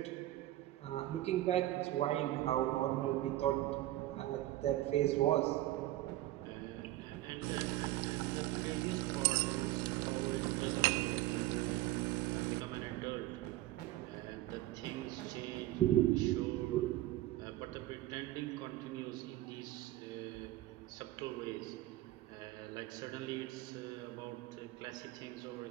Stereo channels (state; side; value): quieter; left; 15.7 dB